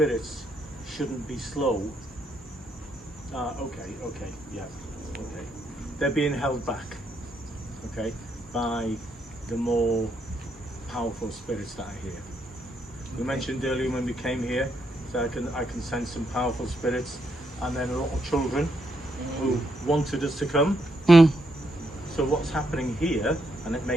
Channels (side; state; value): both; normal; correlation 0.77